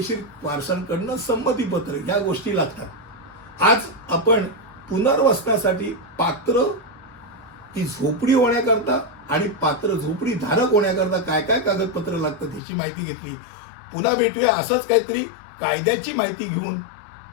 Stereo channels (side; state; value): right; drops out; at 12.6 s